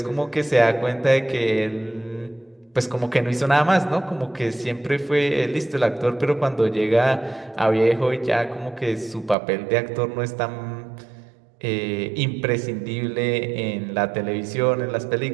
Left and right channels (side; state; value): left; drops out; at 9.3 s